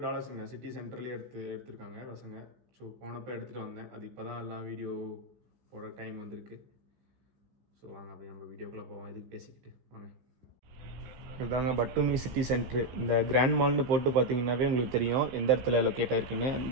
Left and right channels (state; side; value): late; left; 15 ms